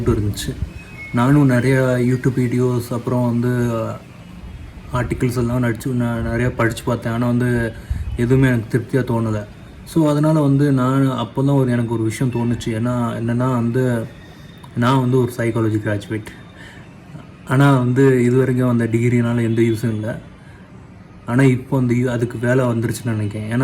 இருந்துச்சு. நானும் நிறையா யூடியூப் வீடியோஸ் அப்புறம் வந்து ஆர்டிகிள்ஸ் எல்லாம் நான் நிறையா படித்து பார்த்தேன். ஆனால் வந்து எதுவுமே எனக்கு திருப்தியாக தோணலை. ஸோ அதனால் வந்து நான் அப்போ தான் எனக்கு ஒரு விஷயம் தோணுச்சு. என்னென்னா வந்து நான் வந்து ஒரு சைக்காலஜி கிராஜுவேட். ஆனால் வந்து இது வரைக்கும் அந்த டிகிரினால் எந்த யூஸும் இல்லை. ஆனால் இப்போ அந்த அதுக்கு வேலை வந்துருச்சுன்னு நினைக்கிறேன்.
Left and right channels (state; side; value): identical; both; correlation 1.00